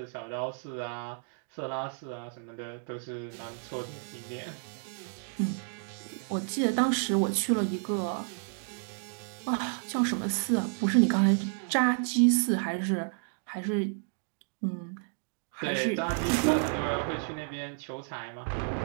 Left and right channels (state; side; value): silent; left; 57 dB below the other